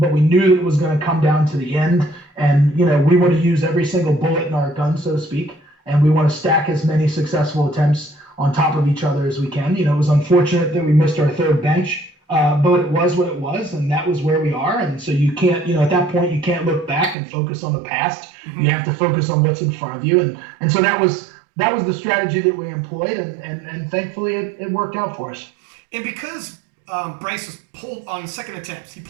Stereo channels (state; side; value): drops out; left; at 17.2 s